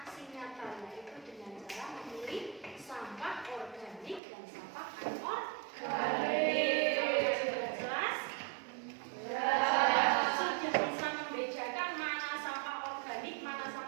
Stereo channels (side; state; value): left; drops out; at 4.2 s